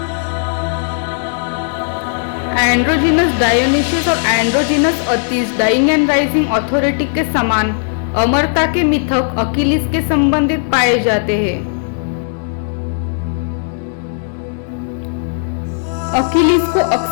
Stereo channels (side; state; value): right; silent; 59 dB below the other